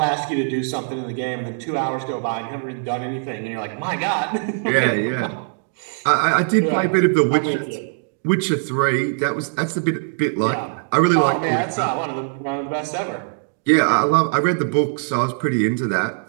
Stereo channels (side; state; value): left; silent; digital silence